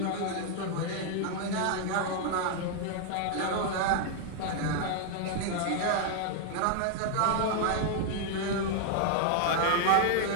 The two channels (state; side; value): different; both; correlation 0.00